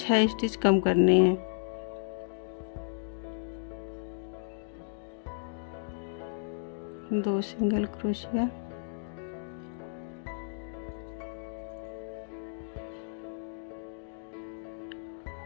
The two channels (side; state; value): right; silent; digital silence